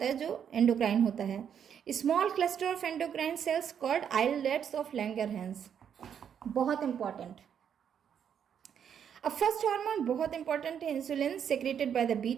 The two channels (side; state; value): left; quieter; 8.3 dB